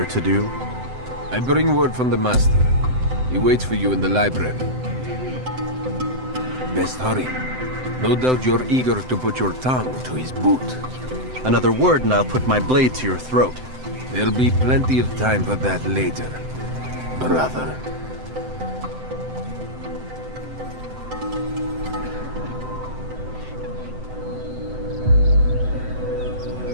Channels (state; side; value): late; left; 7.8 ms